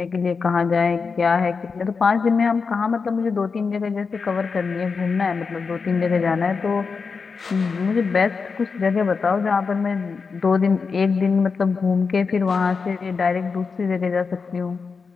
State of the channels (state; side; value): quieter; right; 5.0 dB